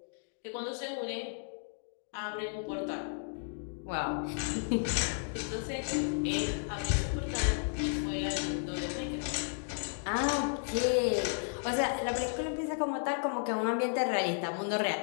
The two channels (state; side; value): silent; right; digital silence